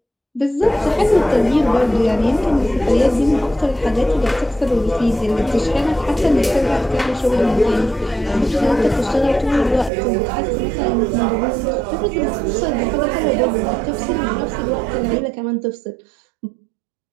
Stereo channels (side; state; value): left; drops out; at 9.9 s